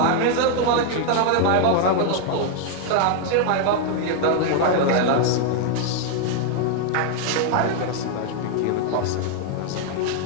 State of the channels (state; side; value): different; both; correlation 0.00